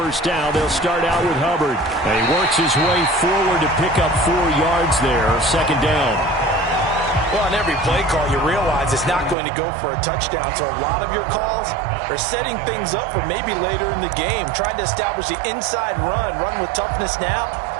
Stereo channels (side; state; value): left; drops out; at 9.3 s